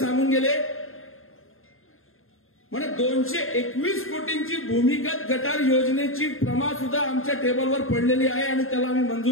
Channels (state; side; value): late; right; 0.60 ms